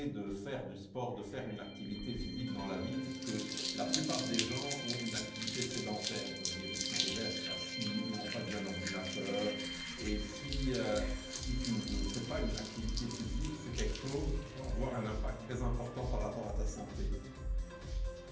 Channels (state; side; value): identical; both; correlation 1.00